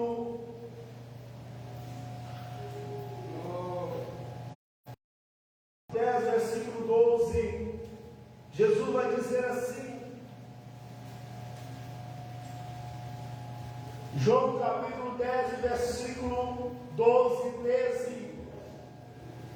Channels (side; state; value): both; identical; correlation 1.00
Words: 10, versículo 12, Jesus vai dizer assim. João capítulo 10, versículo 12 e 13.